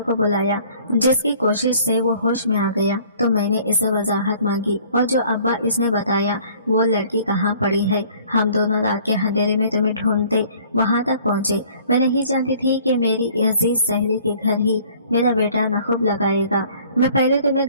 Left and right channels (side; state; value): both; inverted; correlation -0.54